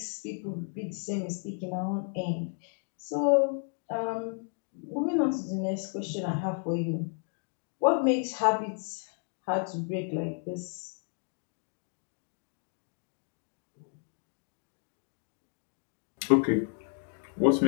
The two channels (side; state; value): right; silent; 56 dB below the other